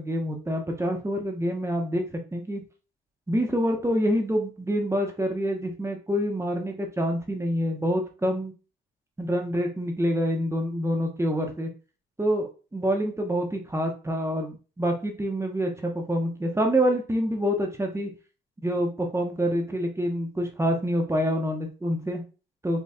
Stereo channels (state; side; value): normal; both; correlation 0.77